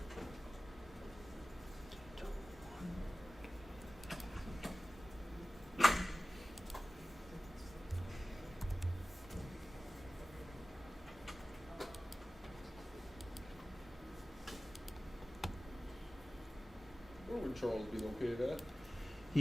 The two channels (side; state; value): both; normal; correlation 0.97